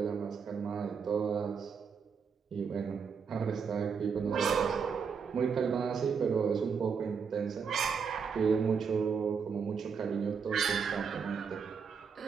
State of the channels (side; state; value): left; quieter; 6.1 dB